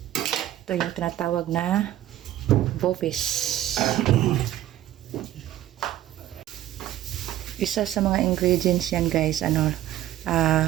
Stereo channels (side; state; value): left; quieter; 13.4 dB